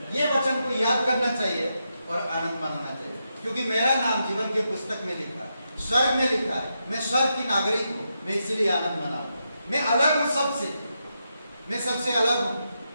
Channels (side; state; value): both; inverted; correlation -0.85